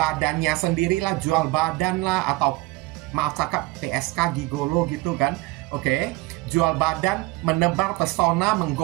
sendirilah, jual badan lah, atau maaf cakap PSK gigolo gitu kan. Oke, jual badan, menebar pesona,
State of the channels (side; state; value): left; quieter; 21.6 dB